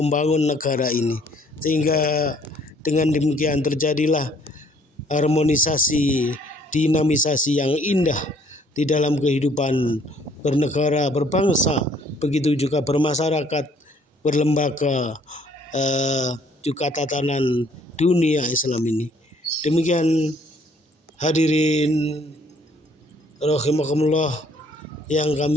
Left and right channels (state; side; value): normal; both; correlation 0.61